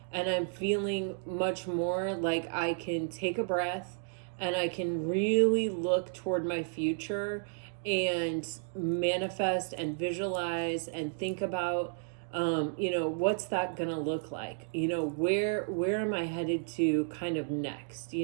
and I'm feeling much more like I can take a breath and I can really look toward my future and manifest and visualize and think about what's that gonna look like? Where am I headed to kind of next?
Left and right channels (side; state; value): left; silent; digital silence